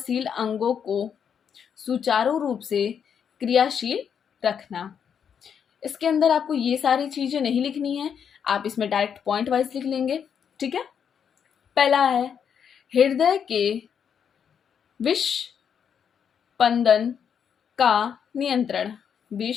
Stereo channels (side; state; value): right; quieter; 7.6 dB